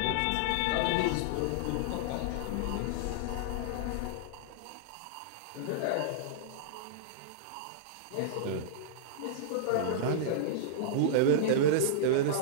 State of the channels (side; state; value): both; different; correlation -0.02